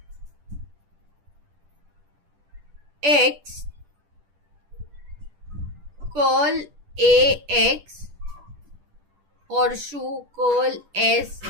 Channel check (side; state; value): left; late; 10 ms